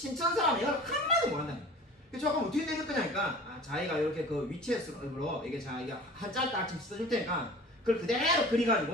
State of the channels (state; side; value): normal; both; correlation 0.42